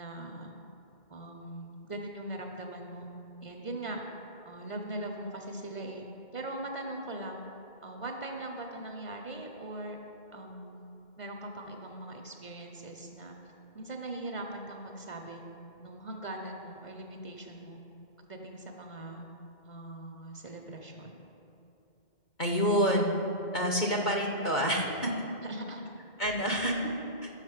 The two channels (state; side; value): late; right; 2.2 ms